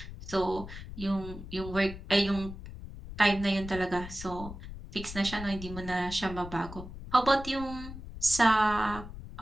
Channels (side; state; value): left; noise; rumble, 11 dB below the sound